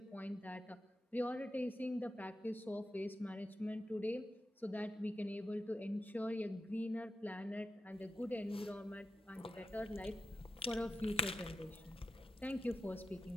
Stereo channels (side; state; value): both; normal; correlation 0.89